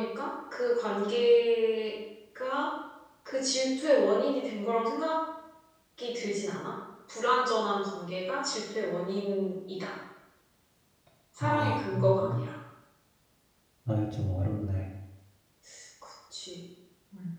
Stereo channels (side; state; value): both; identical; correlation 1.00